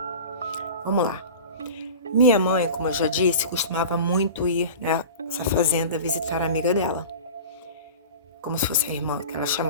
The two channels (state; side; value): inverted; both; correlation -0.35